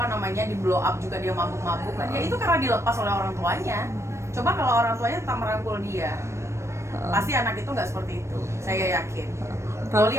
di blow up juga dia mabuk-mabukan, ya itu karena dilepas oleh orang tuanya. Coba kalau orang tuanya tetap merangkul dia, pasti anak itu nggak seperti itu. Saya yakin. Loli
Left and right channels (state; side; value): late; left; 0.13 ms